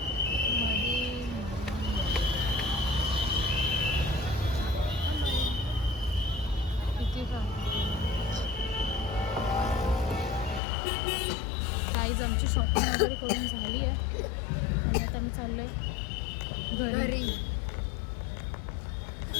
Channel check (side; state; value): right; drops out; at 10.6 s